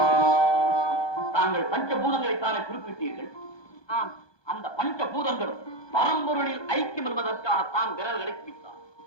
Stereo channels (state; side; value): late; right; 1.2 ms